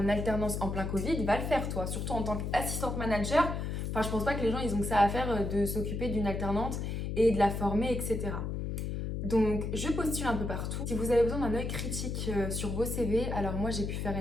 alternance en plein Covid va le faire, toi. Surtout en tant qu'assistante manager. Enfin, je pense pas que les gens, ils ont que ça à faire de s'occuper d'une alternante et de la former, etc. Donc, je postule un peu partout. Si vous avez besoin d'un œil critique sur vos CV, alors moi, j'ai pu faire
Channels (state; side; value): noise; left; hum, 3 dB below the sound